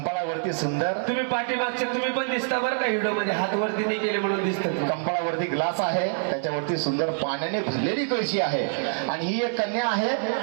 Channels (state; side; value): silent; left; digital silence